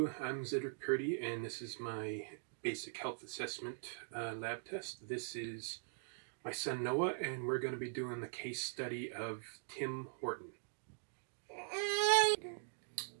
I'm Cedric Purdy, and this is my basic health assessment lab test. This is my son Noah, and we're going to be doing the case study of Tim Horton.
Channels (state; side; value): silent; left; digital silence